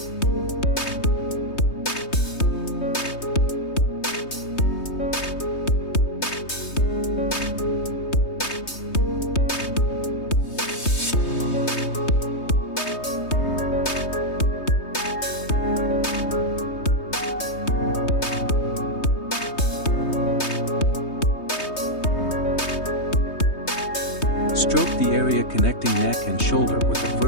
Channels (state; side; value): late; right; 3.2 ms